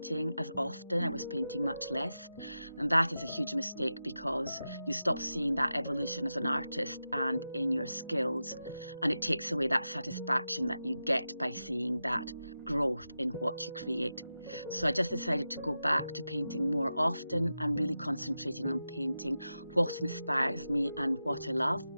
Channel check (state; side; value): inverted; both; correlation -0.92